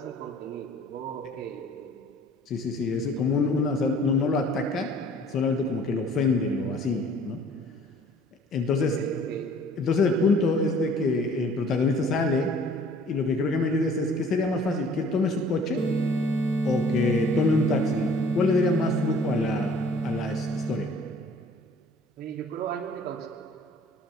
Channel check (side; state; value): both; normal; correlation 0.53